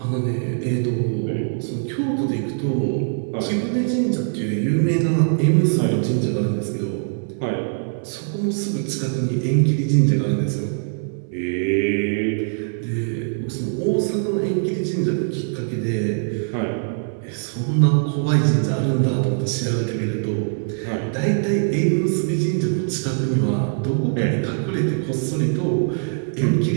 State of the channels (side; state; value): left; silent; 64 dB below the other